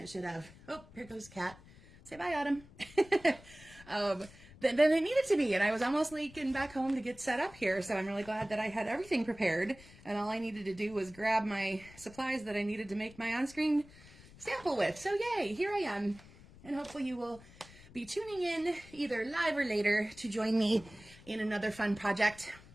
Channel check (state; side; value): noise; left; rumble, 21 dB below the sound